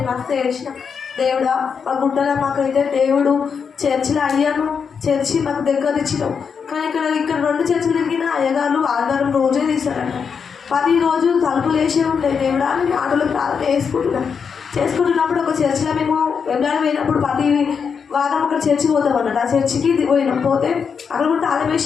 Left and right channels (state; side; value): quieter; right; 6.3 dB